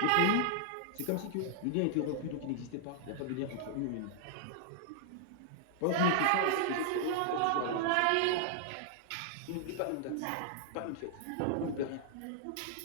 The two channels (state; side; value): different; both; correlation -0.01